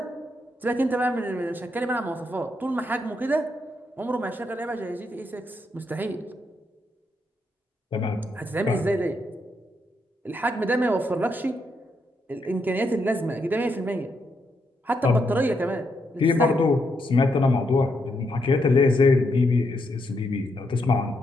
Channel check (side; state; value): both; normal; correlation 0.79